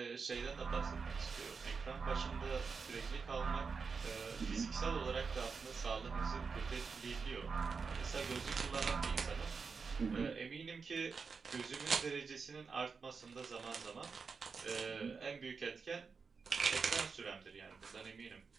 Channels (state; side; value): quieter; left; 5.1 dB